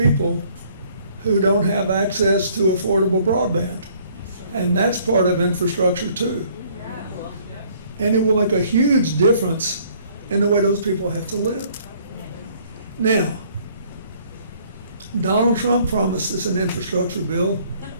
who don't have access to affordable broadband. And that's part of infrastructure too. And it will make a huge difference in the way those people have to live. Now, Donald Trump promised us an infrastructure bill,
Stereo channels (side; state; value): both; inverted; correlation -0.60